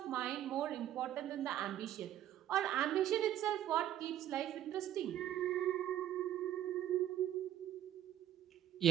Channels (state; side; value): quieter; left; 11.8 dB